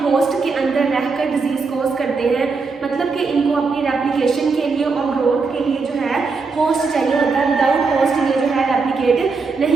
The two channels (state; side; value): quieter; left; 4.5 dB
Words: होस्ट के अंदर रहकर डिजीज़ कोज करते हैं। मतलब कि इनको अपनी रेप्लिकेशन के लिए और ग्रोथ के लिए जो है होस्ट चाहिए होता है। विदाउट होस्ट ये जो है रेप्लिकेट